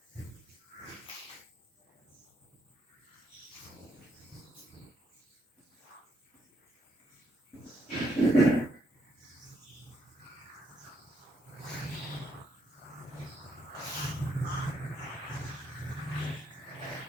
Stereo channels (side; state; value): both; normal; correlation 0.75